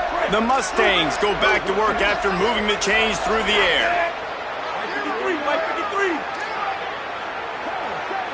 The Mustangs go back to work after moving the chains through the air.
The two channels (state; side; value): identical; both; correlation 1.00